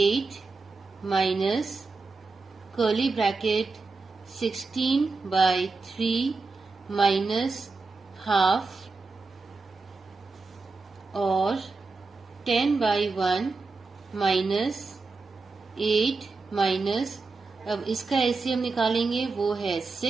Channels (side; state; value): left; quieter; 4.0 dB